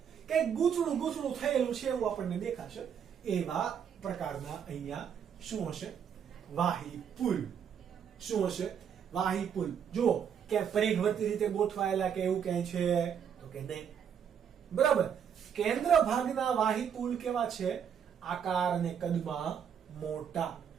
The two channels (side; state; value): left; quieter; 8.0 dB